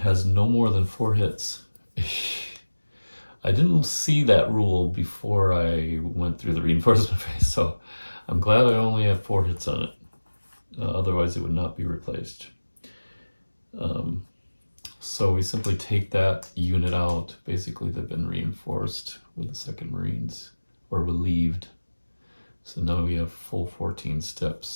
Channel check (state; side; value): inverted; both; correlation -1.00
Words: no more than 4 hits. I didn't see that rule before I went through the reinforcement phase, so I'm glad I only have 4 hits on it. Otherwise it would not be replaced. So we simply take that unit out. Basically they've been reinforced with the 2nd Marines, or relieved. So now we have full 14